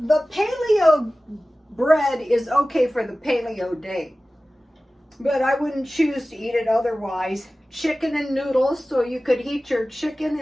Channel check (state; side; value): normal; both; correlation 0.96